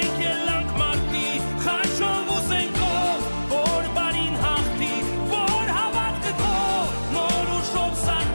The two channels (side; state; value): both; inverted; correlation -1.00